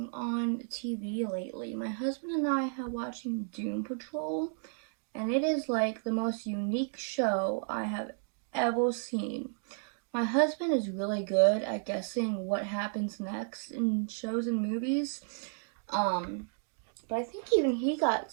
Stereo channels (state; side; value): silent; left; digital silence